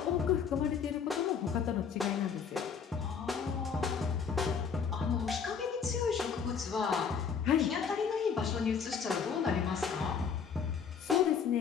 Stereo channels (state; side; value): quieter; right; 6.5 dB